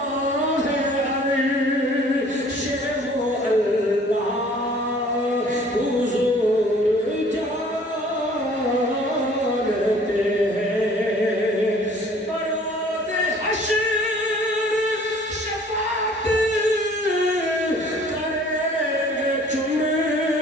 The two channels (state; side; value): normal; both; correlation 0.53